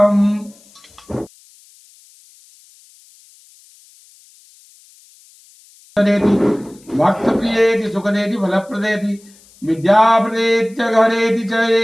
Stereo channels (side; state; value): left; noise; hiss, 28 dB below the sound